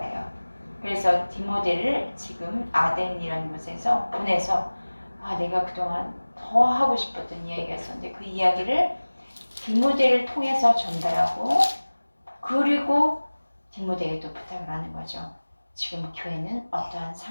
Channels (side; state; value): both; inverted; correlation -1.00